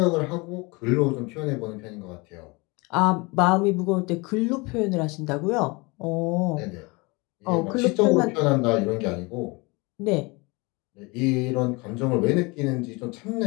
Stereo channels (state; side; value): quieter; right; 26.4 dB